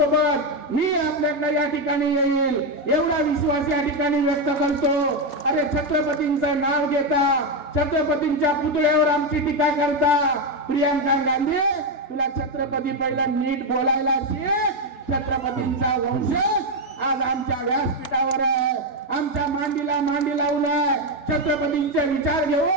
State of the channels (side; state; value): right; late; 3.3 ms